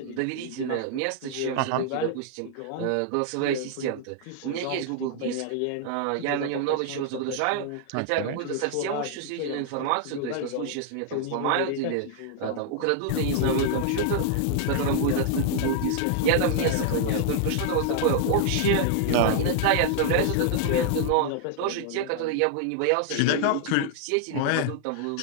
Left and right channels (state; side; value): different; both; correlation 0.00